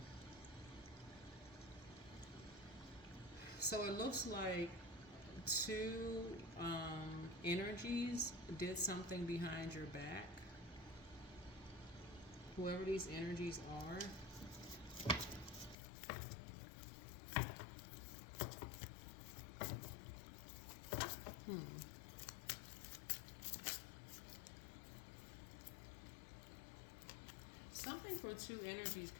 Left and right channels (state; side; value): drops out; right; at 15.8 s